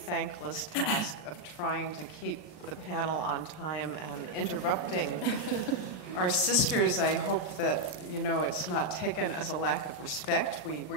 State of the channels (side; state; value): right; late; 33 ms